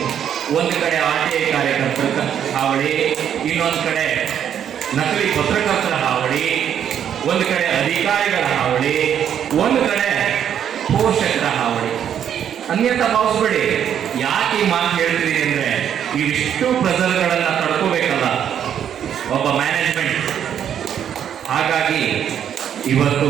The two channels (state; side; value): quieter; left; 9.2 dB